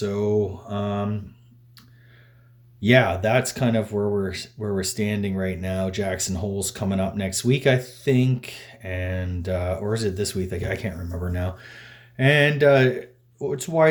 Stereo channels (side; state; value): both; identical; correlation 1.00